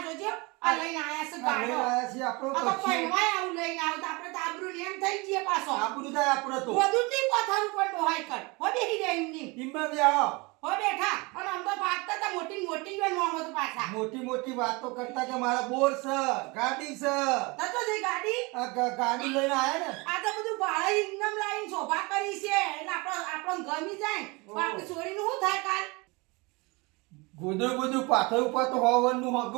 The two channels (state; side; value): quieter; left; 26.3 dB